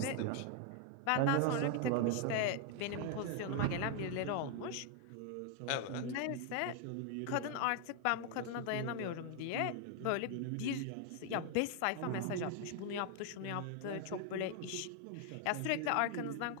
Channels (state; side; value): different; both; correlation 0.00